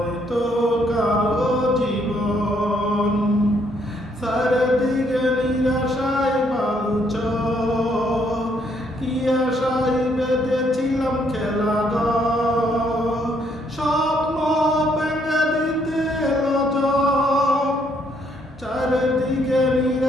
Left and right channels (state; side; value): normal; both; correlation 0.70